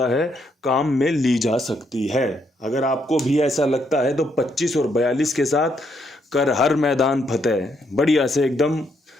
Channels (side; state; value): both; normal; correlation 0.75